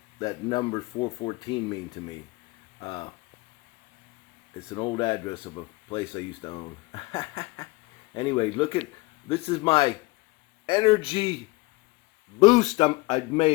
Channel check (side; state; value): right; quieter; 23.0 dB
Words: number 414 mean to me. It's an old address of a place I used to own. Anyway, look at this is my energy boost I